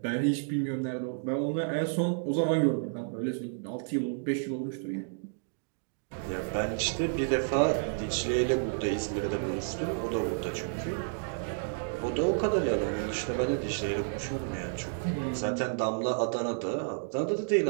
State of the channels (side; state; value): left; silent; digital silence